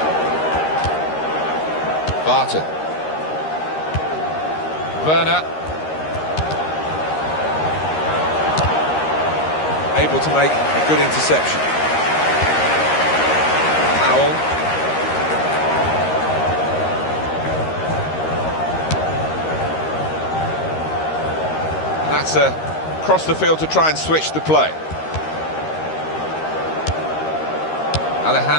Barton. Werner. Able to make a good interception. Powell. And that's across the field to try and switch the play.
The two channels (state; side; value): late; right; 13 ms